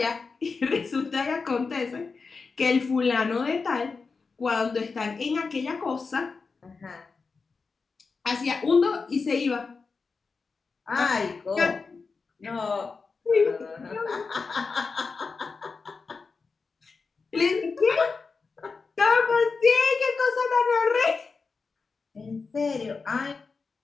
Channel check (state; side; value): quieter; right; 4.6 dB